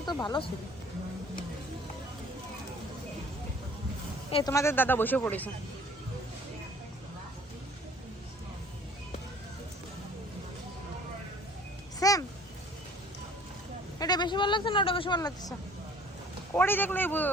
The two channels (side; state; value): both; normal; correlation 0.52